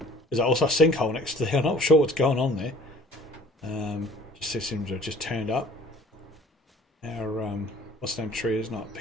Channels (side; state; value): both; normal; correlation 0.50